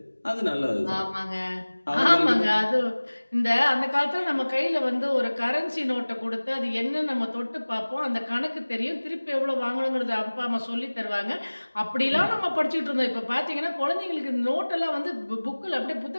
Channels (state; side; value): inverted; both; correlation -1.00